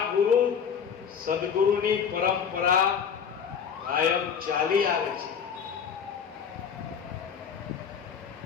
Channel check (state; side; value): quieter; right; 7.1 dB